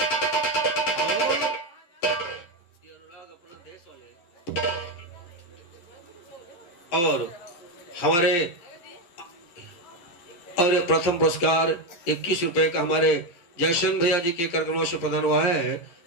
और हमारे और प्रथम पुरस्कार 21 रुपए का हमारे जयशन भैया जी के कार्यक्रमों से प्रदान हुआ है,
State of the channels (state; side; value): late; right; 11 ms